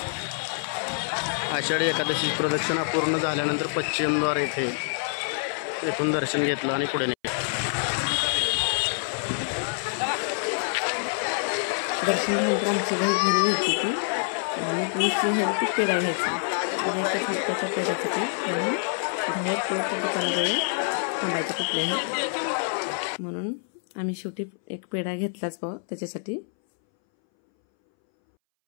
आषाढी एकादशी प्रदक्षिणा पूर्ण झाल्यानंतर पश्चिमद्वार येथून दर्शन घेतलं आणि पुढे दर्शन झाल्यानंतर आमची घरी घ्यायची होती आणि दुसरी घ्यायची पेढा घ्यायचा. त्या पेढ्यासाठी म्हणून बाहेर पोळच्या दुकानाजवळ थांबायचं कुठल्याही, म्हणून आम्ही शेवटी एक पेढा घेतलाच भाऊ त्याच्यासाठी.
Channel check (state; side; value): silent; right; 61 dB below the other